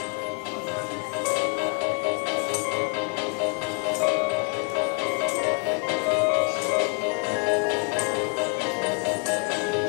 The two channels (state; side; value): quieter; right; 35.0 dB